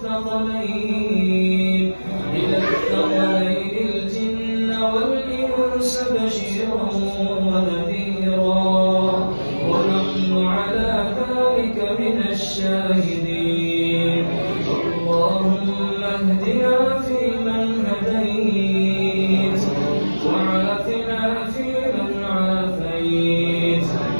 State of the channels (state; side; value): inverted; both; correlation -1.00